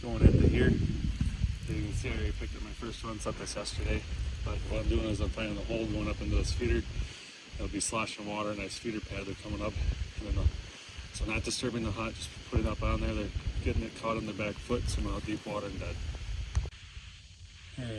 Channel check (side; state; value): both; identical; correlation 1.00